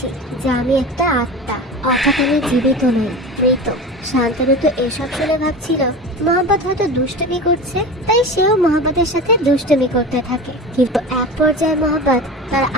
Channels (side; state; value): both; normal; correlation 0.31